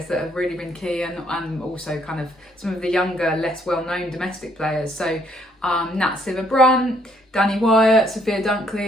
that have really been key, and also kind of some of the younger, less well-known domestic players. So Nat Sciver-Brunt, Danny Wyatt, Sophia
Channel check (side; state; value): both; normal; correlation 0.68